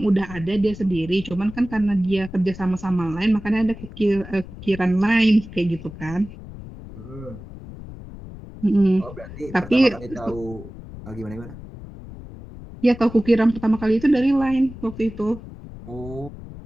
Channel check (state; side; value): noise; left; rumble, 14 dB below the sound